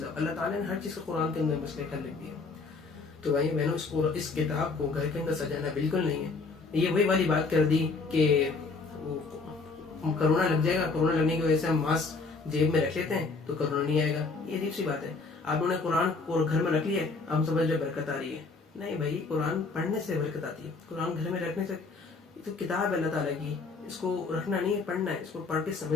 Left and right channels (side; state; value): right; quieter; 4.1 dB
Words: اللہ تعالیٰ نے ہر چیز کا قرآن کے اندر مسئلے حل لکھ دیا. تو بھائی میں نے اس کتاب کو گھر کے اندر سجانا بالکل نہیں ہے. یہ وہی والی بات کر دی کہ کرونا لگ جائے گا، کرونا لگنے کی وجہ سے ہم ماسک جیب میں رکھ لیتے ہیں تو کرونا نہیں آئے گا. یہ عجیب سی بات ہے. آپ نے قرآن کو گھر میں رکھ لیا، ہم سمجھ رہے برکت آ رہی ہے. نہیں بھائی، قرآن پڑھنے سے برکت آتی ہے. قرآن گھر میں رکھنے سے، یہ تو کتاب ہے اللہ تعالیٰ کی، اس کو رکھنا نہیں ہے، پڑھنا ہے، اس کو پڑھ کے